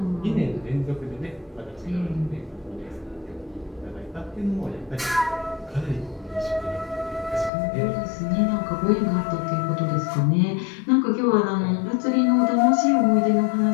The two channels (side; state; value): right; drops out; at 7.5 s